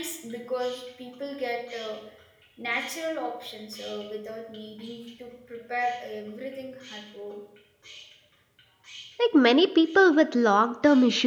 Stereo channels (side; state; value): both; identical; correlation 1.00